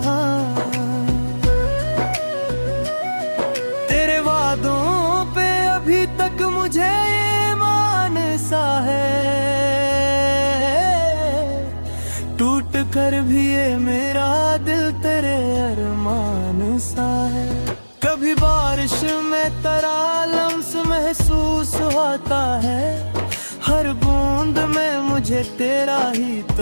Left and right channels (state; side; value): inverted; both; correlation -1.00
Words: तेरे वादों पे अभी तक मुझे ईमान सा है, टूट कर भी ये मेरा दिल तेरे अरमान सा है। कभी बारिश में तेरा लम्स महसूस होता है, हर बूंद में मुझे तेरा ही